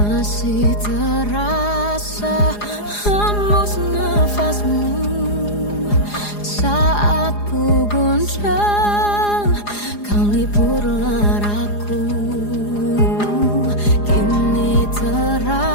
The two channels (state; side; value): late; right; 4.9 ms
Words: Masih terasa hembus nafasmu saat ku guncang, kau lipurlah raku. Kini